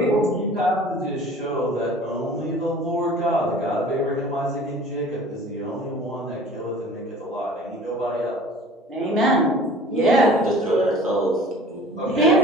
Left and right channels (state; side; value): normal; both; correlation 0.45